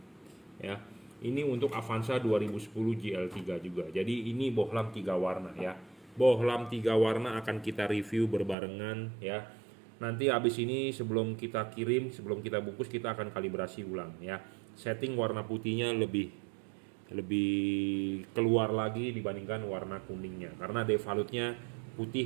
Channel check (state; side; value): drops out; left; at 8.6 s